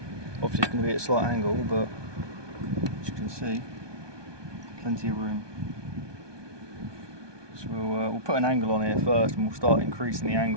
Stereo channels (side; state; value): left; late; 1.2 ms